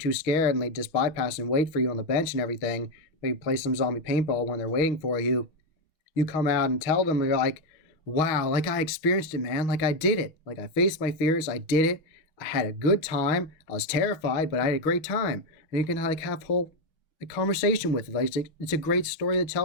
scared and they just bypass and wait for you on the bench and everything, maybe play some zombie paintball when they're waiting for you, you come out and tell them, you're like, wow, like I experienced it, man. Like I did it. Like I faced my fears. I did it. I had a good time. I was terrified, but I had a great time. And you can like have whole a conversation with it. Like it's a great story to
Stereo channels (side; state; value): right; late; 6.1 ms